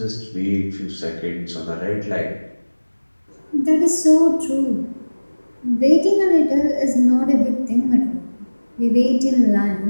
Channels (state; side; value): inverted; both; correlation -1.00